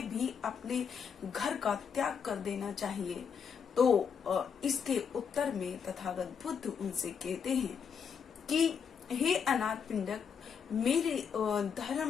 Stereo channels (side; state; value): right; quieter; 6.8 dB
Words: भी अपने घर का त्याग कर देना चाहिए? तो इसके उत्तर में तथागत बुद्ध उनसे कहते हैं कि हे अनाथ पिंडक, मेरे